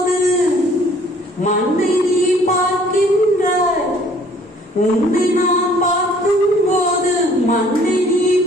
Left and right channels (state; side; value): normal; both; correlation 0.57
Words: மண்ணை நீ பார்க்கின்றாய், உன்னை நான் பார்க்கும் போது மண்ணை நீ